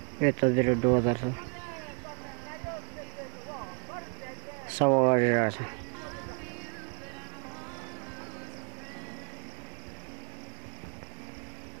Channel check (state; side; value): quieter; left; 36.7 dB